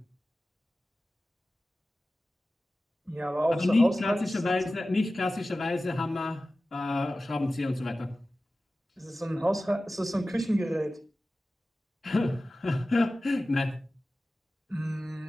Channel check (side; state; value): both; normal; correlation 0.95